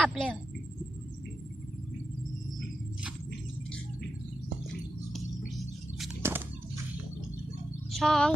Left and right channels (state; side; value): normal; both; correlation 0.89